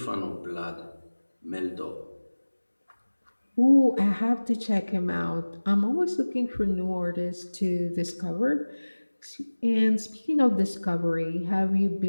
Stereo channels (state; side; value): inverted; both; correlation -1.00